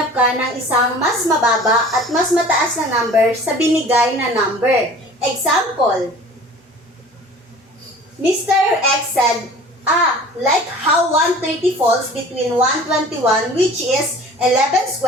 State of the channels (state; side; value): normal; both; correlation 0.45